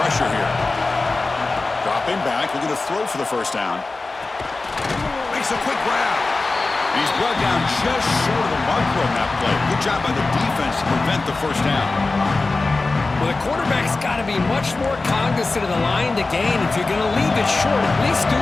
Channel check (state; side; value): quieter; right; 3.5 dB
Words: here. Dropping back, looking to throw for the 1st down. Makes a quick grab. He's brought down just short of the marker on that play. Good job by the defense to prevent the 1st down. Well, the quarterback's got to be much more cognizant of the line to gain. If you're going to leave it short, at least do